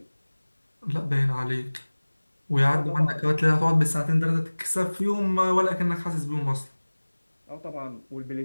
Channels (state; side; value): inverted; both; correlation -1.00